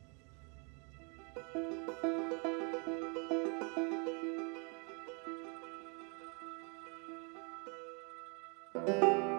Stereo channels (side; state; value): left; quieter; 35.4 dB